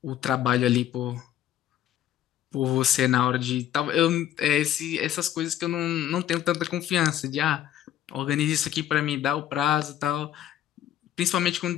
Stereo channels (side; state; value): right; quieter; 11.6 dB